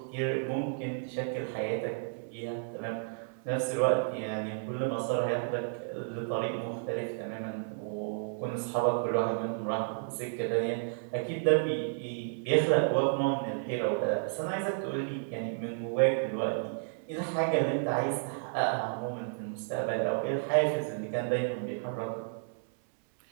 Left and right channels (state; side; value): silent; left; 57 dB below the other